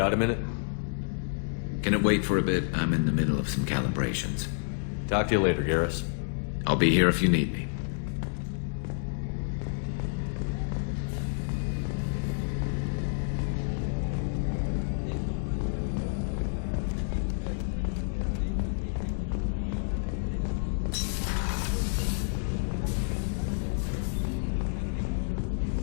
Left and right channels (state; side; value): silent; right; digital silence